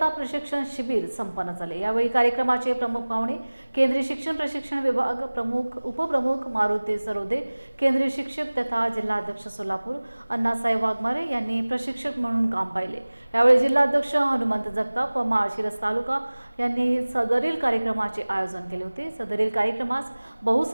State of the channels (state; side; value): inverted; both; correlation -1.00